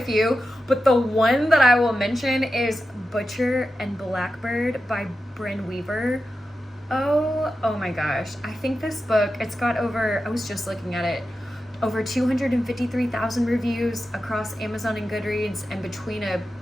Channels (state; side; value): normal; both; correlation 0.91